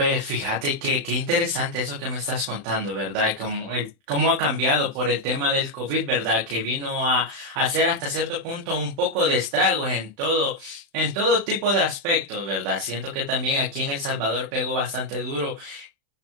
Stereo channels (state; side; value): late; left; 35 ms